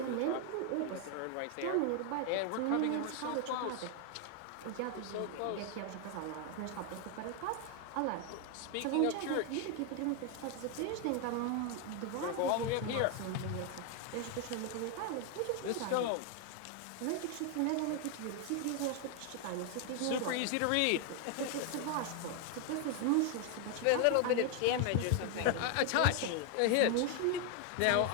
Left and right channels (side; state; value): both; different; correlation 0.00